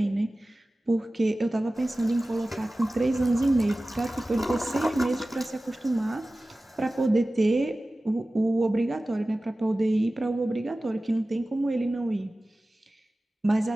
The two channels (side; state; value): both; normal; correlation 0.96